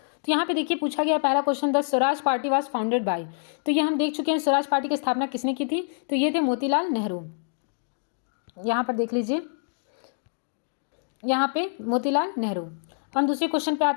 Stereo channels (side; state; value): right; silent; digital silence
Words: यहाँ पे देखिए पूछा गया पहला question, the Swaraj party was founded by. तो ये हम देख चुके हैं, स्वराज पार्टी की स्थापना किसने की थी, तो ये थे मोतीलाल नेहरू। यहाँ पर देख लीजिए, यहाँ पे मोतीलाल नेहरू। हम दूसरे क्वेश्चन पे